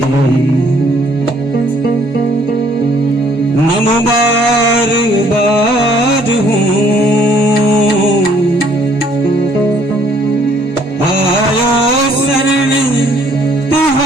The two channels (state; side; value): normal; both; correlation 0.63